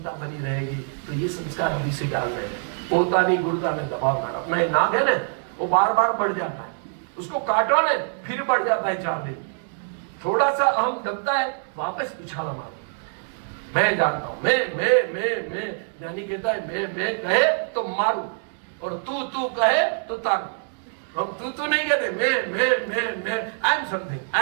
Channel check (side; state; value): left; silent; 62 dB below the other